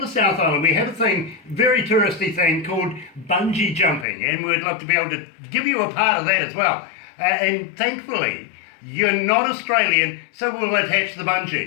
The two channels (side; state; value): right; drops out; at 4.0 s